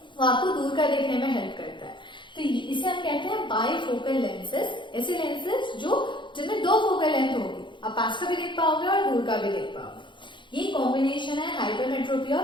वो आपको दूर का देखने में हेल्प करता है। तो इसे हम कहते हैं बाइफोकल लेंसेज, ऐसे लेंसेज जो जिनमें दो फोकल लेंथ होगी, आप पास का भी देख पाओगे और दूर का भी देख पाओगे। ये कॉम्बिनेशन है हाइपरमेट्रोपिया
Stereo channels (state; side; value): late; right; 0.23 ms